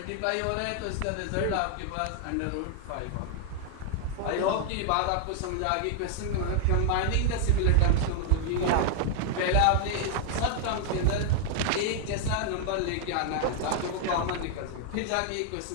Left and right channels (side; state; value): both; different; correlation 0.00